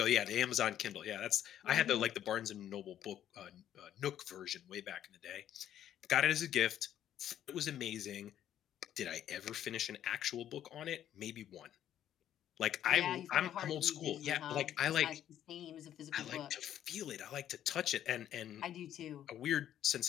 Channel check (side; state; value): right; quieter; 11.0 dB